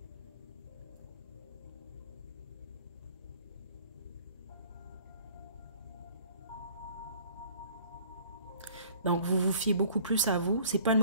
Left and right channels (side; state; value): both; inverted; correlation -0.53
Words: Donc vous vous fiez beaucoup plus à vous. C'est pas une